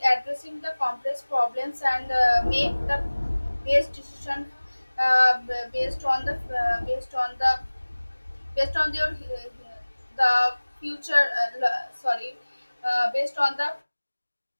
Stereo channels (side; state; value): both; inverted; correlation -1.00